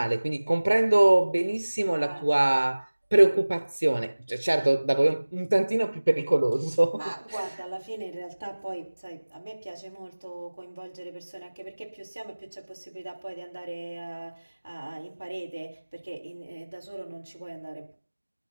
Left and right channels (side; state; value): both; inverted; correlation -1.00